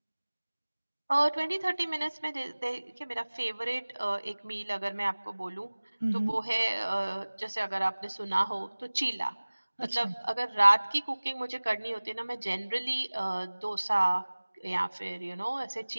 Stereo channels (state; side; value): inverted; both; correlation -1.00